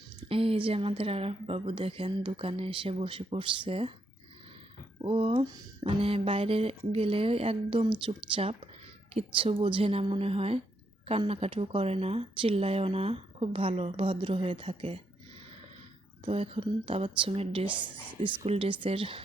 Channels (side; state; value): both; normal; correlation 0.77